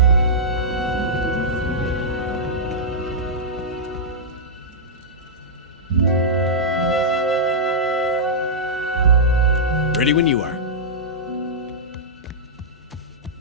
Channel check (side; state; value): both; normal; correlation -0.11